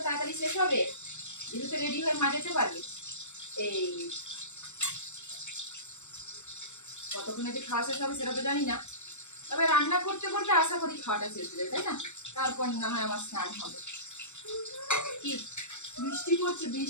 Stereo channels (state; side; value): late; right; 0.83 ms